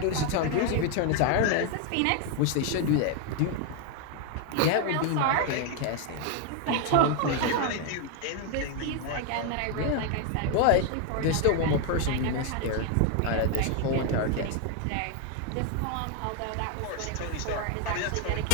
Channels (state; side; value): different; both; correlation 0.01